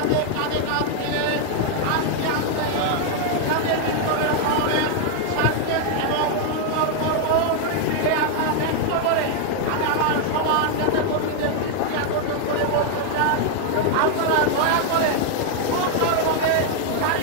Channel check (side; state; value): both; different; correlation 0.00